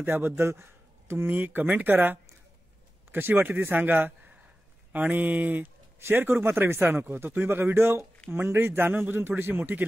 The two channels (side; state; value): both; normal; correlation 0.95